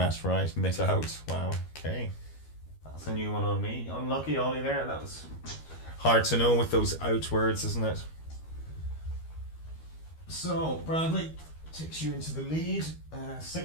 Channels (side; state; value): right; late; 13 ms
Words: right, mit Wow. Okay. That's a new one on me. Unlucky, Ollie. There. That was hard to know with those out words, isn't it? So Bradley takes you into the lead.